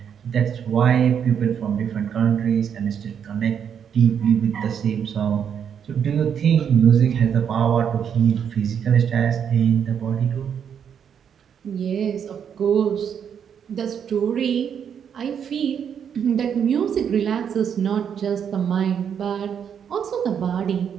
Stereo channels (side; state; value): left; quieter; 8.0 dB